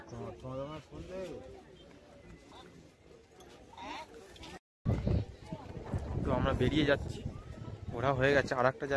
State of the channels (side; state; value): both; identical; correlation 1.00